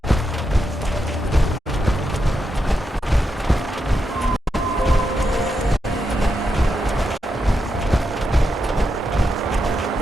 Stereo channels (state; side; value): normal; both; correlation 0.84